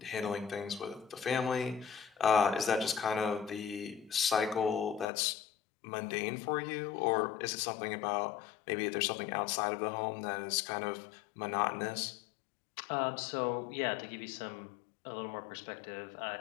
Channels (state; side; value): drops out; right; at 5.1 s